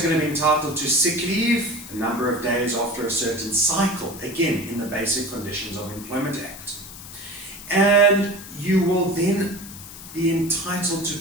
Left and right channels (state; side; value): noise; left; hiss, 14 dB below the sound